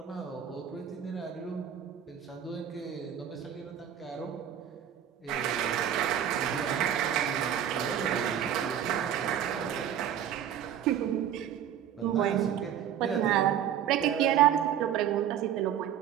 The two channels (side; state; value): left; quieter; 9.7 dB